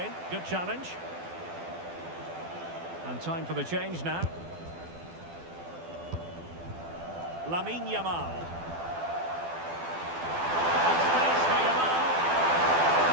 Good challenge. And time for the change now. Lamine Yamal. And space for Yamal.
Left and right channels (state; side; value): late; left; 12 ms